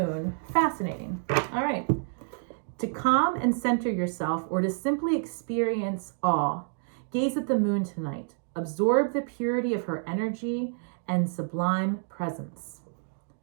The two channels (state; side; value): silent; left; 59 dB below the other